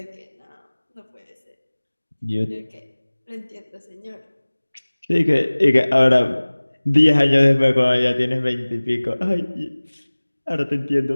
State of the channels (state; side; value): inverted; both; correlation -1.00